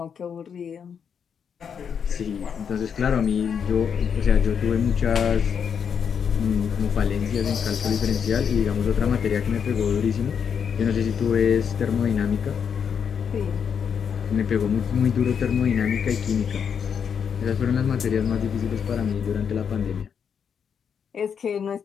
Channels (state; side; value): quieter; right; 7.2 dB